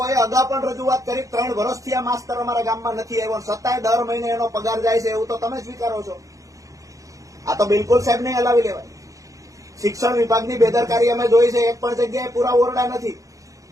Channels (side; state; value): left; late; 0.16 ms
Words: અગાઉ પણ રજૂઆત કરી, 3 વર્ષથી આ માસ્તર અમારા ગામમાં નથી આવ્યો, છતાંય દર મહિને એનો પગાર જાય છે, એવું તો તમે સ્વીકારો છો। આ તો બિલકુલ સાહેબ નહીં હલાવી લેવાય। શિક્ષણ વિભાગની બેદરકારી અમે જોઈ છે। એક પણ જગ્યાએ પૂરા ઓરડા નથી।